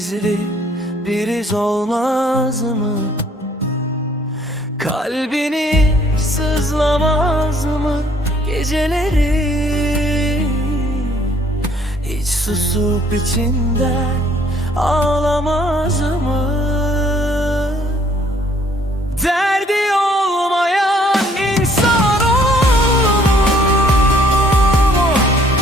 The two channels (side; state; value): both; normal; correlation 0.62